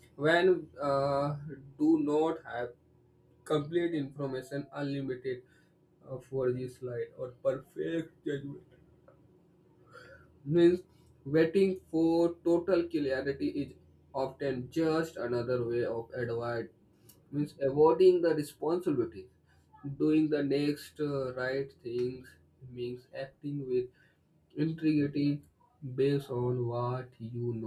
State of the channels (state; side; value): identical; both; correlation 1.00